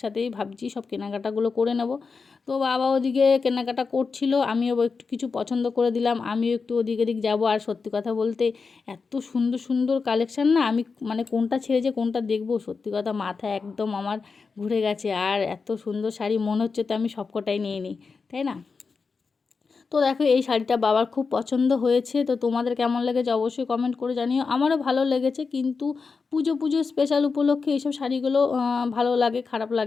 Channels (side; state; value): right; quieter; 4.8 dB